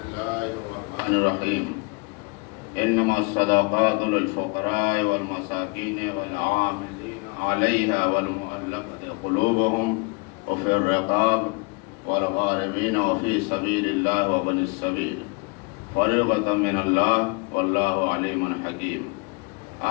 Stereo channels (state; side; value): quieter; right; 30.5 dB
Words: الله الرحمن الرحيم إنما الصدقات للفقراء والمساكين والعاملين عليها والمؤلفة قلوبهم وفي الرقاب والغارمين وفي سبيل الله وابن السبيل فريضة من الله والله عليم حكيم